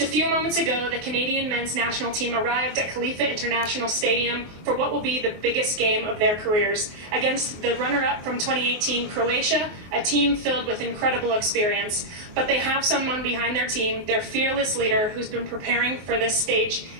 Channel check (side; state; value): left; late; 23 ms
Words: a few moments ago, the Canadian men's national team arrived at Khalifa International Stadium for what will be the biggest game of their careers against the runner-up from 2018 Croatia, a team filled with incredible experience. But they have someone behind their team, their fearless leader, who's been preparing for this stage